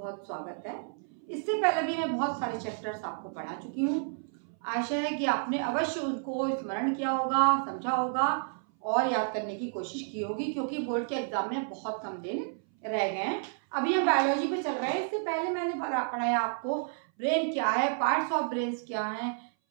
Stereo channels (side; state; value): left; silent; 57 dB below the other